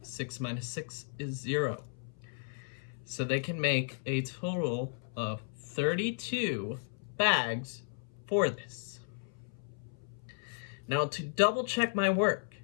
6 minus 6 is 0. So they can make a total of 32 bags for this. Now to double check my work,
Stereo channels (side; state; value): right; silent; 55 dB below the other